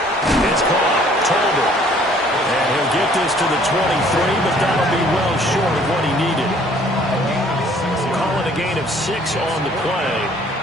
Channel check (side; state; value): both; normal; correlation 0.58